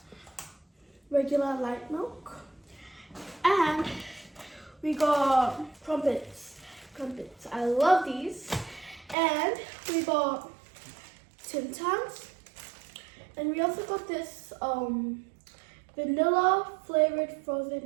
Regular light milk. And we got crumpets. I love these. And we got Tim Tams. And we also got this vanilla flavored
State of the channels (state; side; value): drops out; left; at 9.2 s